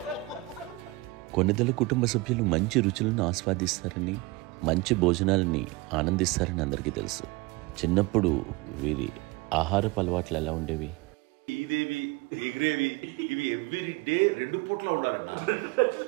కొన్నిదల కుటుంబ సభ్యులు మంచి రుచులను ఆస్వాదిస్తారని, మంచి భోజనాలని ఆనందిస్తారని అందరికీ తెలుసు. చిన్నప్పుడు వీరి ఆహారపు అలవాట్లు ఎలా ఉండేవి? ఇదేవి ఎగిరేవి ఇవి ఎవ్రీ డే 2 పూట్ల ఉండాలన్న.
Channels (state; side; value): quieter; left; 21.4 dB